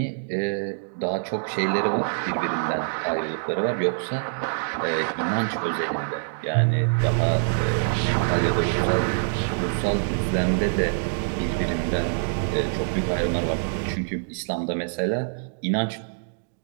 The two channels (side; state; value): left; silent; digital silence